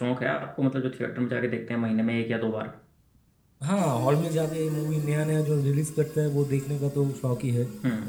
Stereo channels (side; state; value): both; identical; correlation 1.00